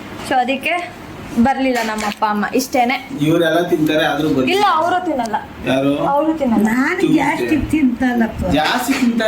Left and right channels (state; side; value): identical; both; correlation 1.00